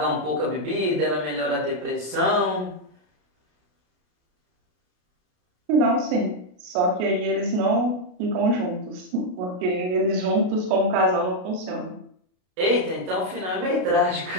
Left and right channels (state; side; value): late; left; 33 ms